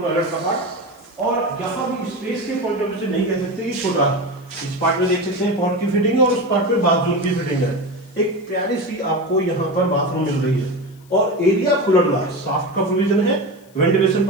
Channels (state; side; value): noise; left; hiss, 29 dB below the sound